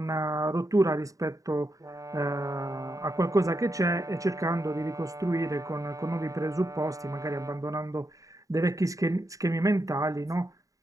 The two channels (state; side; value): late; left; 0.16 ms